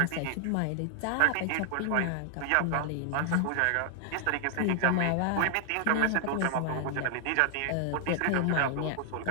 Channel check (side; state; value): both; different; correlation 0.00